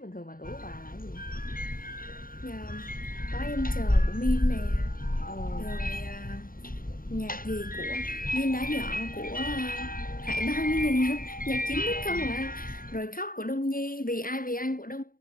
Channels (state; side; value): late; right; 0.41 ms